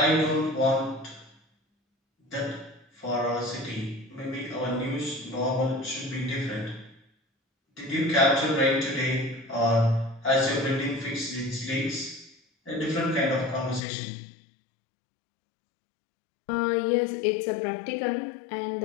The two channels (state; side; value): drops out; right; at 13.8 s